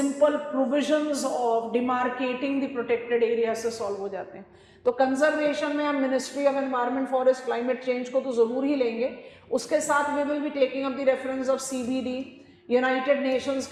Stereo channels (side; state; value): both; identical; correlation 1.00